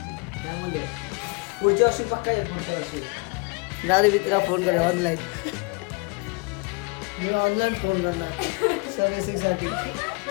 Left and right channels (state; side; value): quieter; right; 30.5 dB